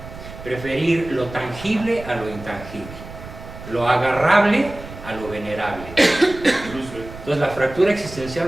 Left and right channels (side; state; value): right; noise; rumble, 14 dB below the sound